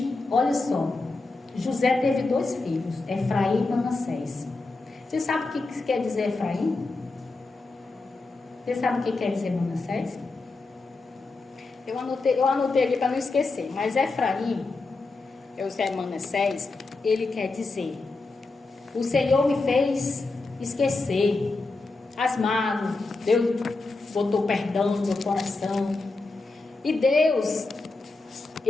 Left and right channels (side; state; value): right; quieter; 3.5 dB